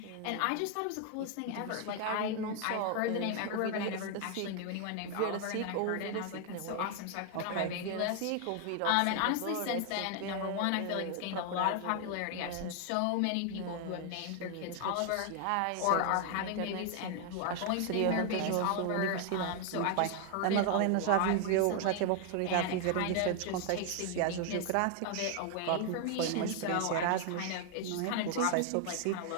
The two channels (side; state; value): both; different; correlation 0.00